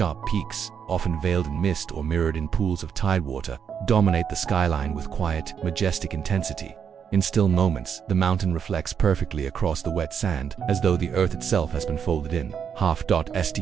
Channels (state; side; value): quieter; left; 7.4 dB